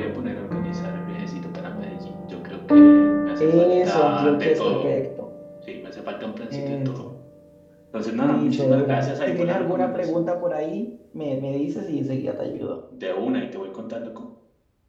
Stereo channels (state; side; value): identical; both; correlation 1.00